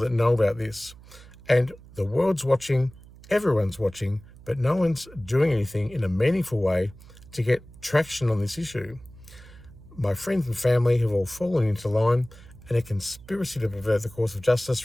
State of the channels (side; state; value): right; noise; hum, 21 dB below the sound